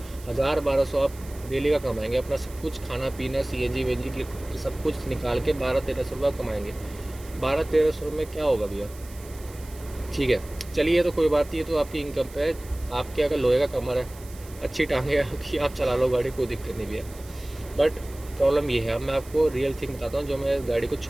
1,000-1,200 आप डेली का कमाएंगे, अपना सब कुछ खाना पीना CNG वेंजी की सब कुछ निकाल के 1,200-1,300 रुपये कमाएंगे। 1,200-1,300 में क्या होगा भैया, ठीक है। चलिए तो कोई बात नहीं, तो आपकी इनकम पे है। आपके अगर लोहे का कमर है, अच्छी टांगे आपकी, आप चला लो गाड़ी, कोई दिक्कत नहीं भैया। बट प्रॉब्लम ये है, अब मैं आपको रियल थिंग बताता हूँ, जो मैं गाड़ी को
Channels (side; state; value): right; noise; hiss, 20 dB below the sound